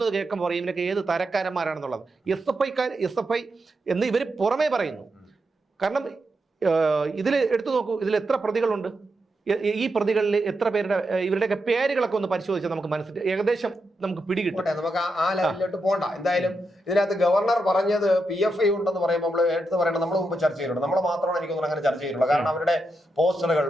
കേൾക്കുമ്പോൾ പറയും ഇവനൊക്കെ ഏത് തരക്കാരന്മാരാണെന്നുള്ളത്. SFI എന്ന് ഇവർ പുറമേ പറയുന്നു. കാരണം ഇതിൽ എടുത്തു നോക്കൂ, ഇതിൽ എത്ര പ്രതികളുണ്ട്? ഈ പ്രതികളിൽ എത്ര പേരുടെ ഇവരുടെയൊക്കെ പേരുകളൊക്കെ ഒന്ന് പരിശോധിച്ചാൽ നമുക്ക് മനസ്സിലായി ഏകദേശം നമുക്ക് പിടികിട്ടും. നമുക്ക് ആ ലെവലിലോട്ട് പോകണ്ട. എന്തായാലും ഇതിനകത്ത് ഗവർണർ പറഞ്ഞത് PFI ഉണ്ടെന്ന് പറയുമ്പോൾ നമ്മൾ എടുത്ത് പറയണം. നമ്മൾ മുമ്പ് ചർച്ച ചെയ്തിട്ടുണ്ട്. നമ്മൾ മാത്രമാണ് എനിക്കൊന്നും അങ്ങനെ ചർച്ച ചെയ്തിട്ടുള്ളത്. കാരണം അവരുടെ പോസ്റ്ററുകൾ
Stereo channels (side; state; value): both; normal; correlation 0.85